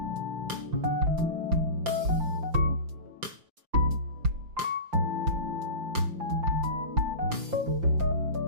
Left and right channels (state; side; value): late; left; 5.8 ms